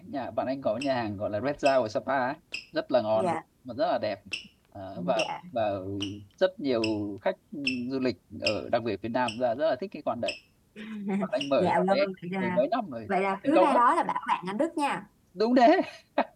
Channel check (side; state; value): both; identical; correlation 1.00